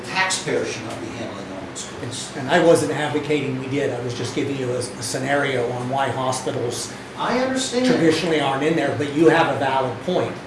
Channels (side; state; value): both; identical; correlation 1.00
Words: taxpayer should not be handling all those costs. And I wasn't advocating we did. I was just giving you a scenario on why hospitals I understand. traditionally aren't in there, but you have a valid point.